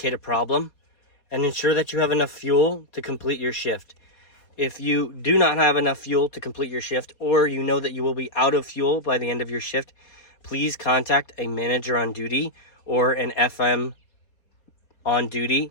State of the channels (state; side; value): late; right; 4.2 ms